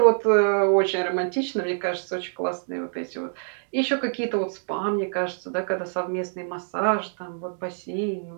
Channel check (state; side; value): silent; left; digital silence